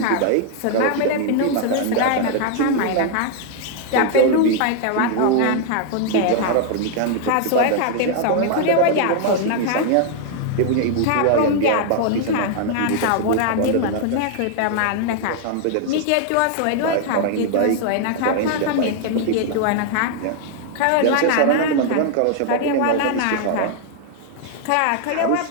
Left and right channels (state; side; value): different; both; correlation 0.00